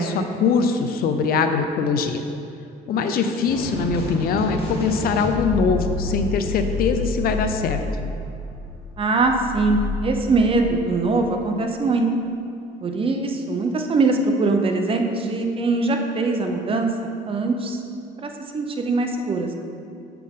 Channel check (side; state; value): both; normal; correlation 0.44